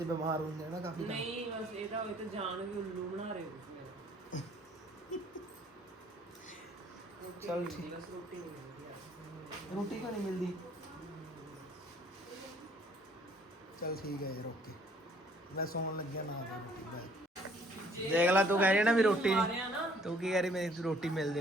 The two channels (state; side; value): normal; both; correlation 0.60